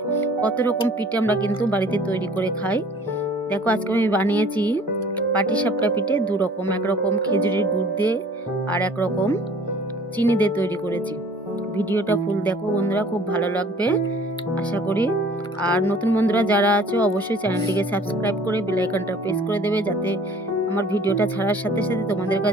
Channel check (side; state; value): both; normal; correlation 0.51